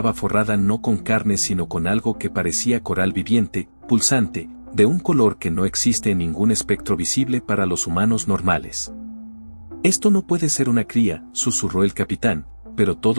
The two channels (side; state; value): both; inverted; correlation -1.00